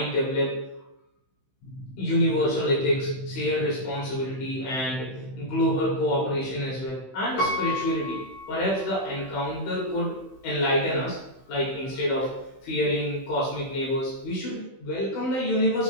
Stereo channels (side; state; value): right; late; 15 ms